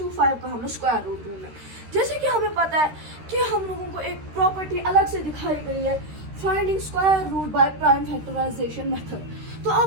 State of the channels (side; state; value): left; late; 13 ms